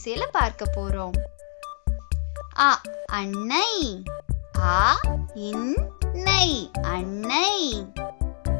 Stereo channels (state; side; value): silent; right; digital silence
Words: பார்க்க போறோம். அ அன்னை, ஆ இன்னை, அன்னை.